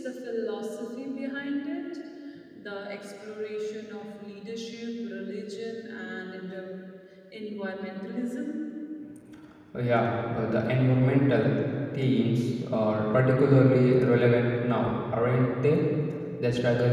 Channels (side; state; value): both; identical; correlation 1.00